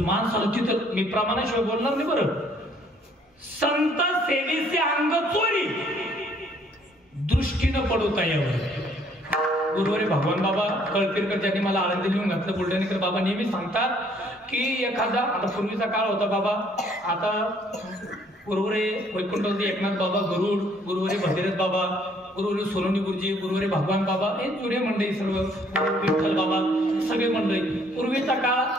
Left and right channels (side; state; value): both; normal; correlation 0.63